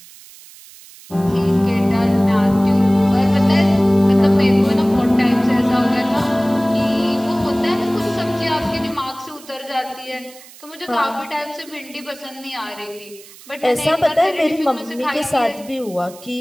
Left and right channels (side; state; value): right; noise; hiss, 21 dB below the sound